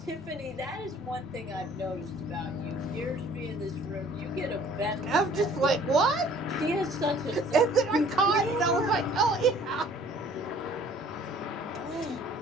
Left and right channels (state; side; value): normal; both; correlation 0.54